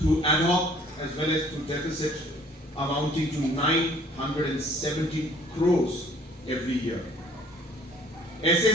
ad hoc as well as through deficit, amounting to 970 crores every year.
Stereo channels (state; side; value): normal; both; correlation 0.56